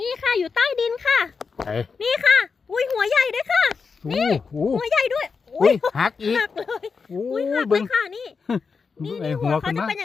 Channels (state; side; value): quieter; right; 5.2 dB